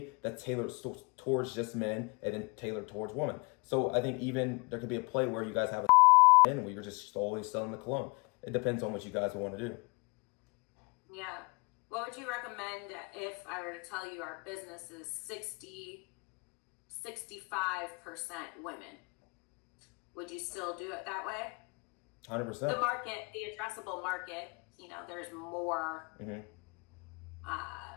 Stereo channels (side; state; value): right; quieter; 28.5 dB